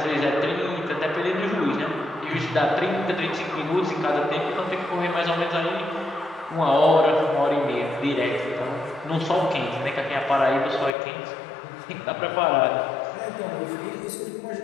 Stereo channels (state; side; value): drops out; right; at 10.9 s